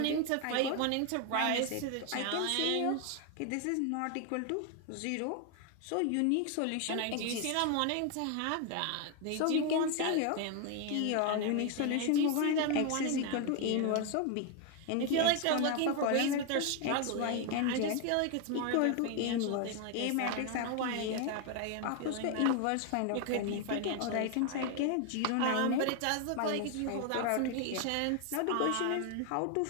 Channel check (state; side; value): different; both; correlation 0.01